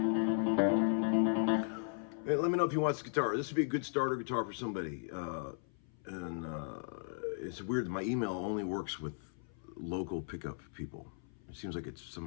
Hey, let me know if you want this guitar. This would be a good starter guitar for somebody. It's weird that my email only works with local pickup people. It seems like it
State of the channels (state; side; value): silent; right; 53 dB below the other